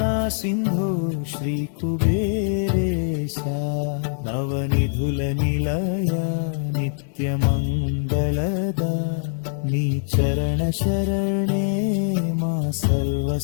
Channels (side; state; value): right; silent; 63 dB below the other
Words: सिंधु श्री कुबेरेश नवनिधुल निलय नित्य मंगलद नी चरण शरणे मा सर्व